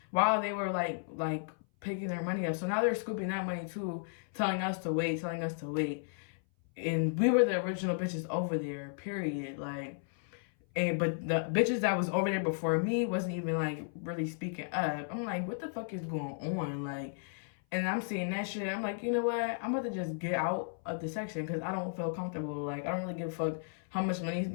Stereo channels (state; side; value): silent; right; 55 dB below the other